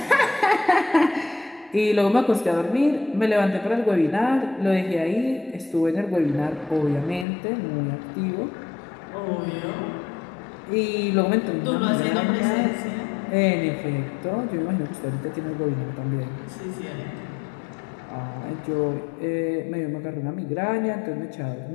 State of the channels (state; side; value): drops out; right; at 7.2 s